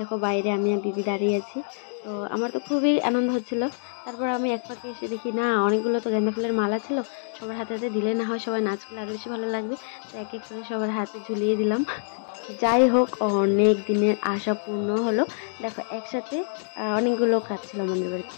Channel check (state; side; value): silent; right; digital silence